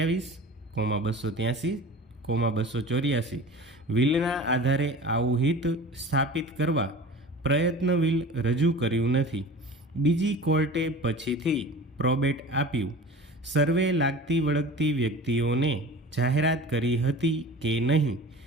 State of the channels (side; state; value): both; normal; correlation 0.38